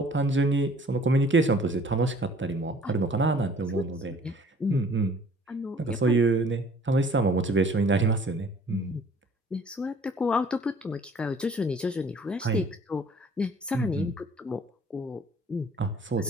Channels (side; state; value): both; normal; correlation 0.54